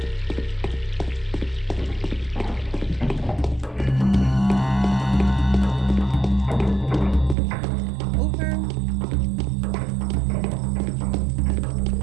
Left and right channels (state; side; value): drops out; left; at 7.4 s